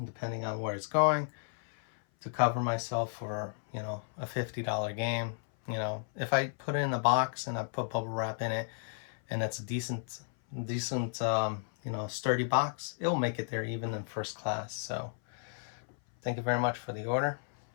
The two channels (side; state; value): right; silent; 56 dB below the other